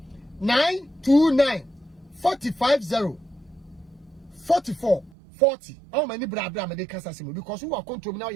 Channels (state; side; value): drops out; left; at 5.1 s